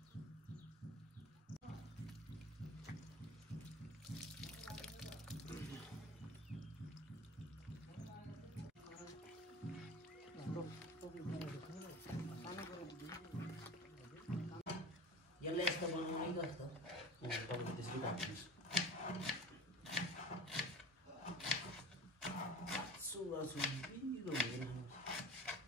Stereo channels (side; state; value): both; normal; correlation 0.38